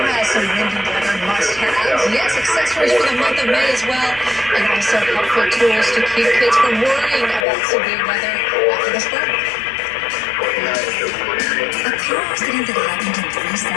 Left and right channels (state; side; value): drops out; right; at 7.5 s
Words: has some windy weather must-haves? Yes, accessories for the month of May as well. And also helpful tools to keep kids from worrying about severe weather after this break. A car accident that happened in 3